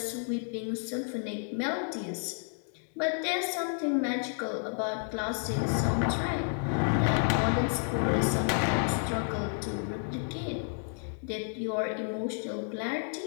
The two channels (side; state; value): right; silent; 57 dB below the other